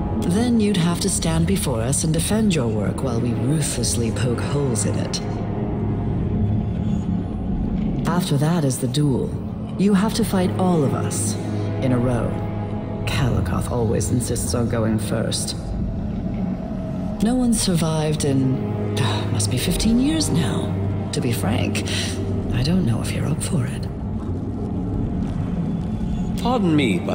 Then you'd have to stand before us and defend your work while we ruthlessly poke holes in it. After that is the duel. You have to fight all of us, in a row. Calicoth always insists on going first. No one's survived in... must be 15 years now. To be frank, I don't know if you're up for it. Pardon me,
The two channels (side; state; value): both; identical; correlation 1.00